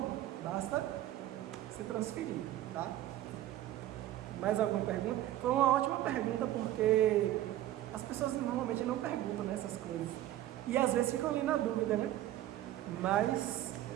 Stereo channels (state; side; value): quieter; left; 13.8 dB